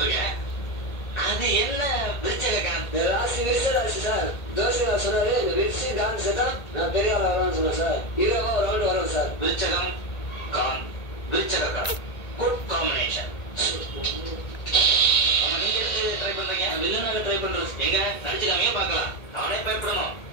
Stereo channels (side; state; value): right; late; 1.8 ms